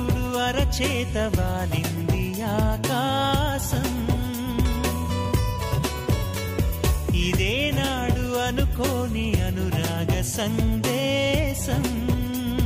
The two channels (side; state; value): both; identical; correlation 1.00